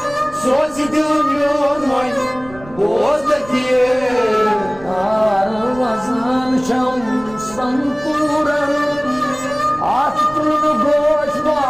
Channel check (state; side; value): noise; right; rumble, 20 dB below the sound